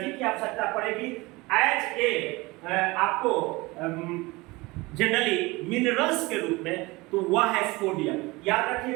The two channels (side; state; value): left; quieter; 22.8 dB